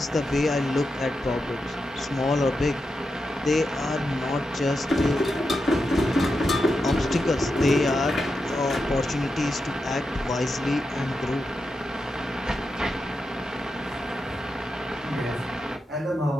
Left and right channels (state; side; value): normal; both; correlation 0.88